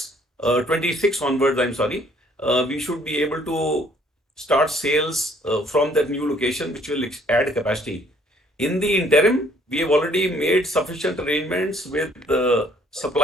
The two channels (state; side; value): normal; both; correlation 0.61